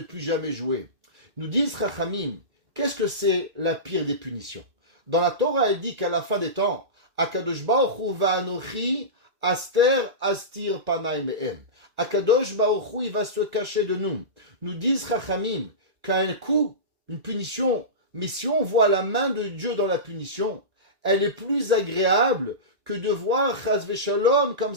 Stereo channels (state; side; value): late; left; 2.0 ms